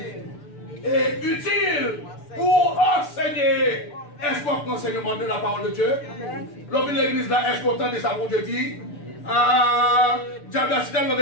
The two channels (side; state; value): right; late; 6.8 ms